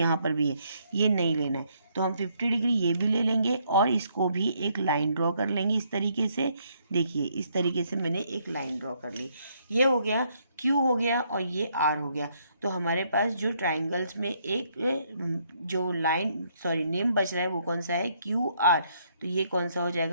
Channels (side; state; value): both; inverted; correlation -0.71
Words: पर भी है, ये नहीं लेना है। तो हम 50 डिग्री ये भी ले लेंगे और इसको भी एक लाइन ड्रॉ कर लेंगे इस तरीके से। देखिए इस तरीके से मैंने एक लाइन ड्रॉ कर ली। ये हो गया, क्यू हो गया और ये आर हो गया। तो हमारे पास जो ट्राइंगल्स में एक जो नेम बच रहा है वो कौन सा है, क्यू आर। तो ये कौन सा हो